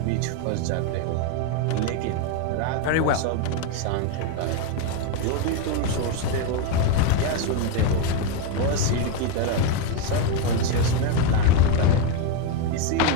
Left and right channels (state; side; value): different; both; correlation 0.02